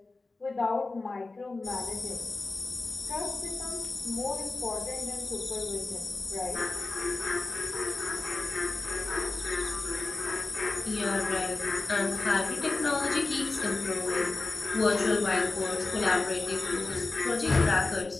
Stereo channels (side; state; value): right; quieter; 3.5 dB